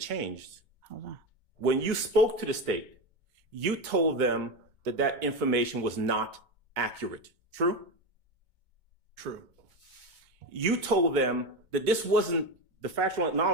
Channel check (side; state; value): left; late; 2.2 ms